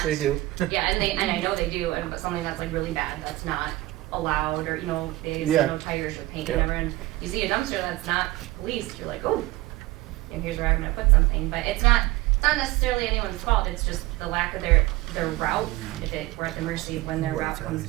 they do. Yeah, and I know they do, and but something that's like really bad, that's not allowed, or, you know, they say Yeah. no tires or paint, Yeah. whatever, and you see a dumpster that's not policed, you're like, oh, and here's where I'm gonna put something, but it's not necessarily anyone's fault, it's just the lack of their route, we're at the mercy of when their route comes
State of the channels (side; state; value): left; quieter; 18.6 dB